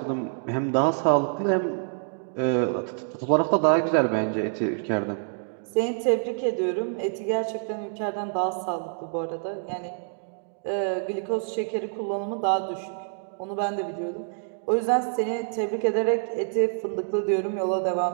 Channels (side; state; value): left; silent; digital silence